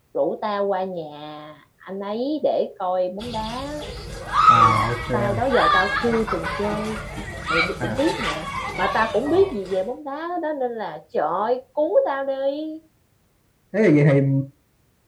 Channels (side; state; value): both; identical; correlation 1.00